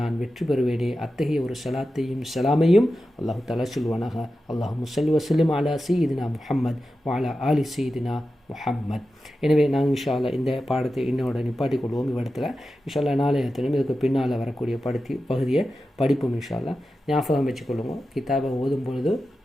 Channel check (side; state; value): both; normal; correlation 0.92